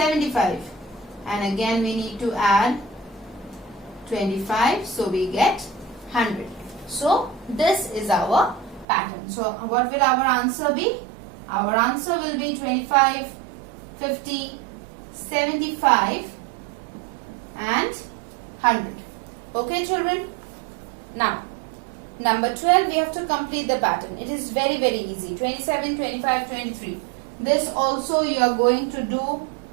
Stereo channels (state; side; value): drops out; left; at 8.8 s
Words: And again, we need to add 25. So, we get 100. So, this is our pattern. So, what will our answer be? Our answer will be 25, 50, 75 and 100. Okay, children? Now, number 12, we have to complete the pattern. It is very, very easy. 27, 25, 23. This also you are going to do